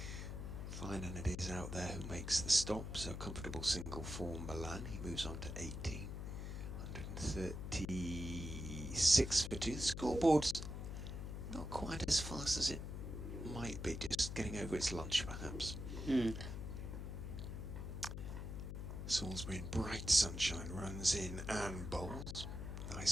Fine, and it is out there who makes the stop, so comfortable single for Milan. He moves on to 18, 136 for 2. The scoreboard's not quite as fast as it might be, just getting over its lunch perhaps. Salisbury in bright sunshine runs in and bowls.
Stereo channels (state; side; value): noise; left; hum, 6 dB below the sound